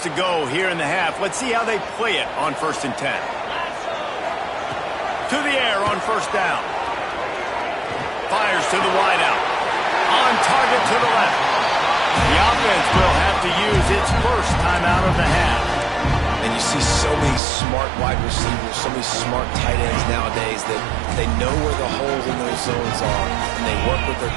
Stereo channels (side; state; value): left; drops out; at 17.4 s